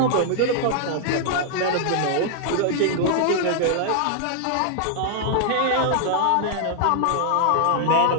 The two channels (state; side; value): different; both; correlation -0.01